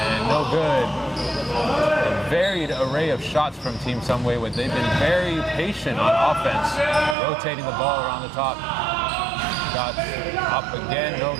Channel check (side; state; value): left; drops out; at 7.2 s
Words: no good. A varied array of shots from Team Sunway, where they've been very patient on offense, rotating the ball around the top. Shot up again, no